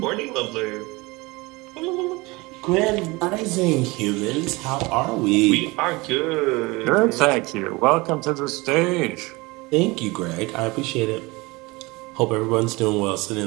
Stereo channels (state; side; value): quieter; left; 23.7 dB